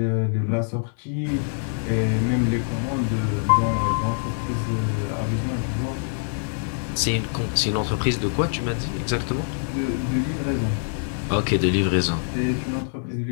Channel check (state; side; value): silent; right; digital silence